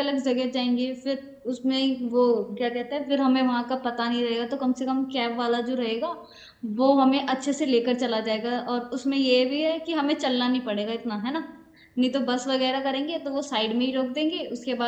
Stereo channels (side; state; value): both; identical; correlation 1.00